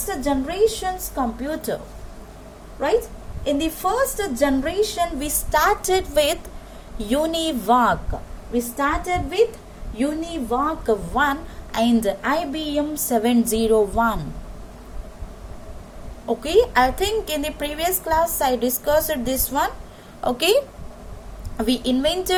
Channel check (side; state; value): both; identical; correlation 1.00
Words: generation's computer. Right. In the first generation we started with UNIVAC. We started with UNIVAC 1 and IBM 701. Okay, I think in the previous class I discussed this one. Okay, we